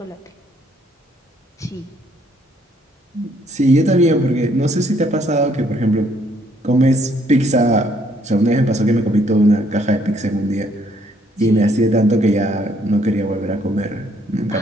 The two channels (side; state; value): both; normal; correlation 0.67